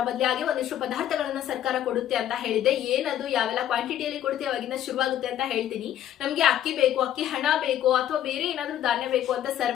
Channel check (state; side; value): quieter; right; 11.4 dB